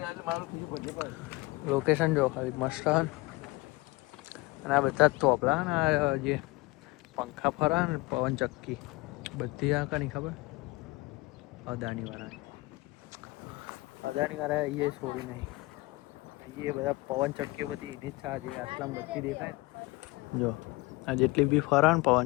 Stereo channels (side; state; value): right; quieter; 22.6 dB